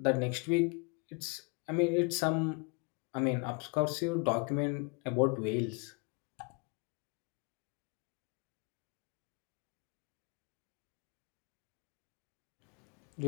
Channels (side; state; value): right; quieter; 32.9 dB